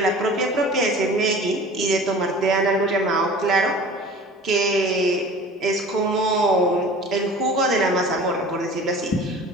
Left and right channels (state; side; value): normal; both; correlation 0.42